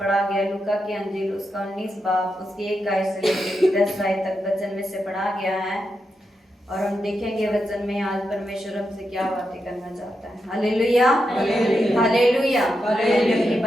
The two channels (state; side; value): normal; both; correlation 0.86